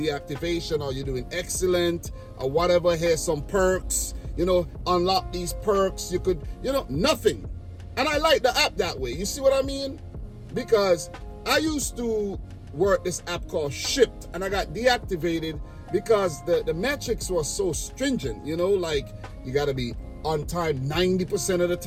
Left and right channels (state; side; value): identical; both; correlation 1.00